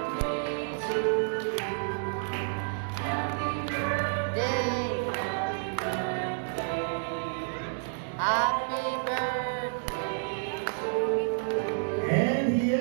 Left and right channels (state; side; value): silent; left; 58 dB below the other